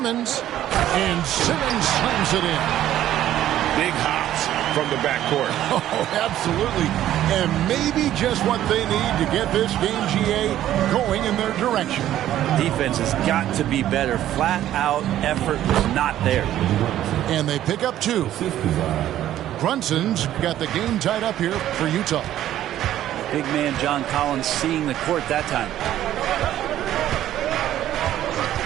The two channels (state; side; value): quieter; left; 12.5 dB